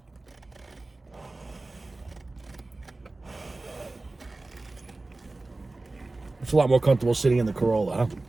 It's a lot more comfortable sitting in the Corolla, huh?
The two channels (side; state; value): left; quieter; 3.1 dB